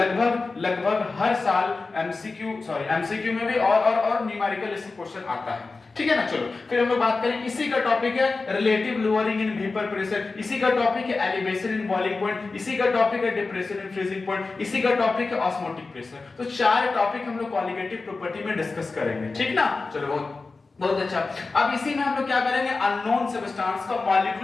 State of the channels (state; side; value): quieter; right; 3.9 dB